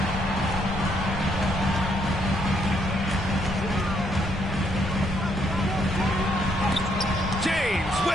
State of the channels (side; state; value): both; normal; correlation 0.72